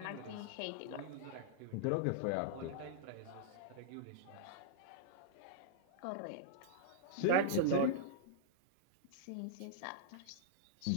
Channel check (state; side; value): different; both; correlation -0.02